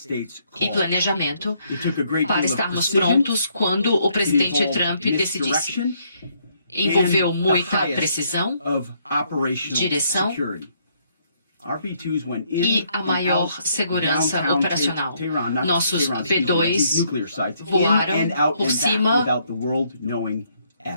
e planejamento para estarmos prontos quando o presidente Trump decidisse. Envolveu muita precisão, direção e a maior segurança operacional. Nossos B-2 voaram por cima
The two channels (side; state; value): both; inverted; correlation -0.70